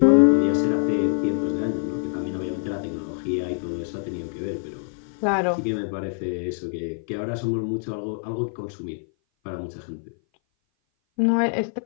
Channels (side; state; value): right; silent; 58 dB below the other